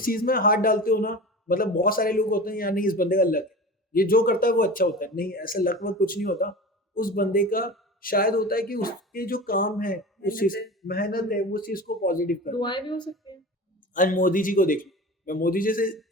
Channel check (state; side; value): normal; both; correlation 0.33